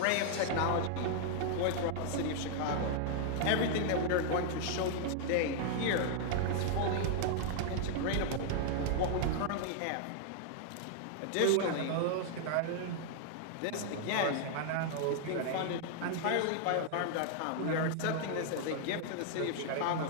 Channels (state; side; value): different; both; correlation -0.01